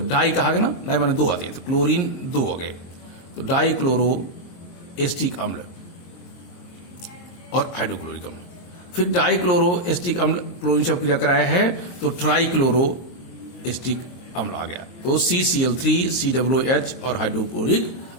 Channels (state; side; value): late; right; 22 ms